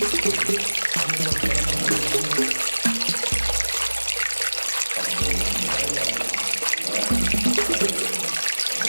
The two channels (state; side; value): inverted; both; correlation -1.00